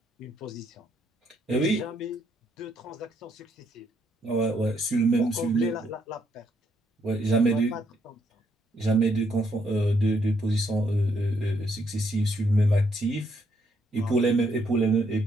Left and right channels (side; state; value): both; normal; correlation 0.73